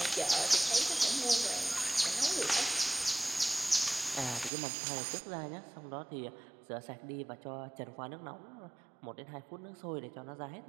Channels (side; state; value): left; drops out; at 4.5 s